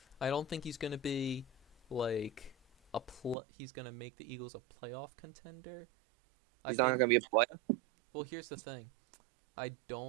I don't think he's going to be like he's going to make the Eagles a playoff contender. I He's not think going to be a player. well, here's the thing. I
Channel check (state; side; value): drops out; left; at 3.4 s